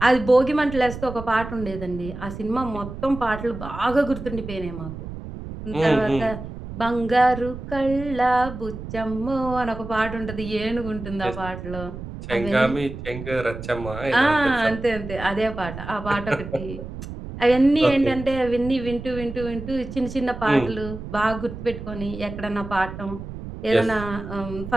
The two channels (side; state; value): right; noise; rumble, 10 dB below the sound